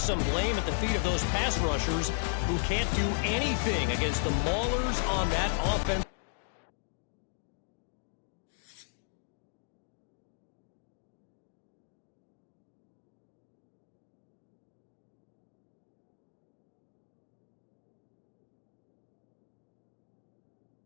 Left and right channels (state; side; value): silent; right; digital silence